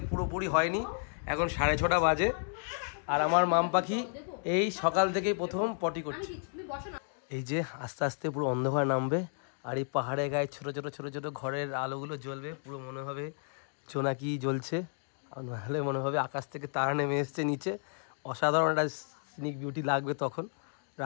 পুরোপুরি হয়নি, এখন 6:30 বাজে। আর আমার মাম পাখি এই সকাল থেকেই প্রথম পটি করছে। এই যে আস্তে আস্তে পুরো অন্ধকার নামবে, আর এই পাহাড়ের গায়ে ছোট ছোট ছোট ছোট ঘরের আলোগুলো জ্বলবে, পুরো মনে হবে জোনাকি জ্বলছে, আর নাহলে মনে হবে আকাশ থেকে তারা নেমে এসছে নিচে। অসাধারণ একটা সিনিক বিউটি লাগবে তখন।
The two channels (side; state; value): right; silent; 56 dB below the other